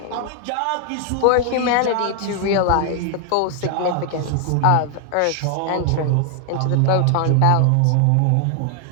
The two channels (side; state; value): both; different; correlation 0.00